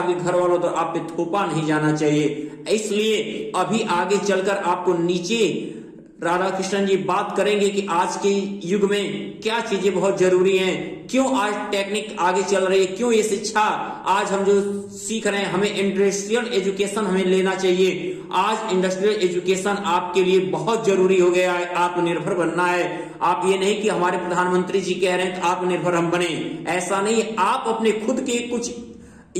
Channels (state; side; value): identical; both; correlation 1.00